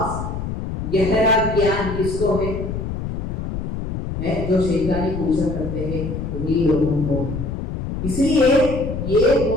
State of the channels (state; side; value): noise; left; rumble, 5 dB below the sound